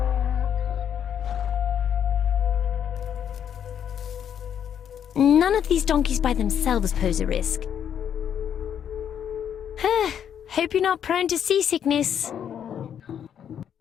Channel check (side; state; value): right; quieter; 8.9 dB